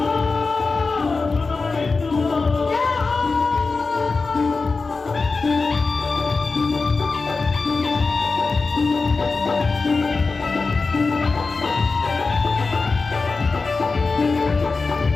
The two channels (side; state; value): right; quieter; 4.1 dB